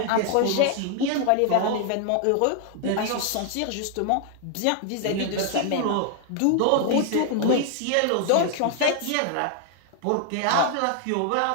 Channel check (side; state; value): both; different; correlation 0.00